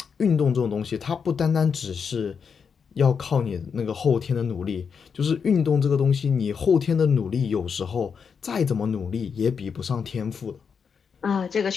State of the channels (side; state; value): right; quieter; 6.3 dB